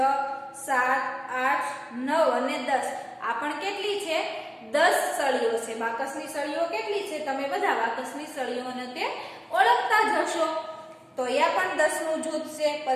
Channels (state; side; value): identical; both; correlation 1.00